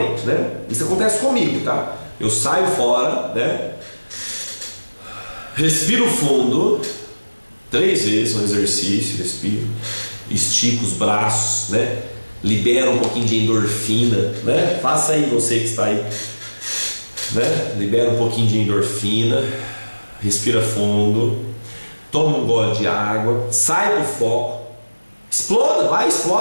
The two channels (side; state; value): both; inverted; correlation -1.00